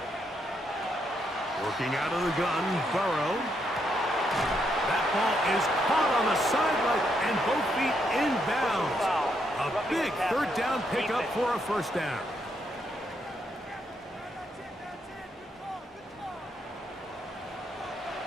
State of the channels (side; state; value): both; normal; correlation 0.77